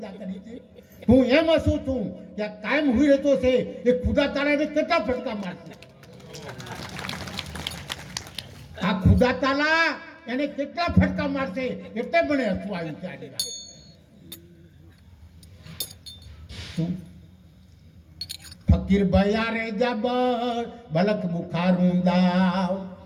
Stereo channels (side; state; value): both; identical; correlation 1.00